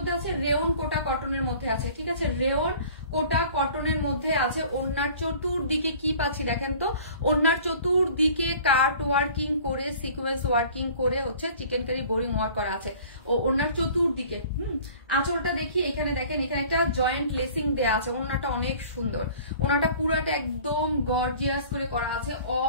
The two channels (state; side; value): inverted; both; correlation -0.48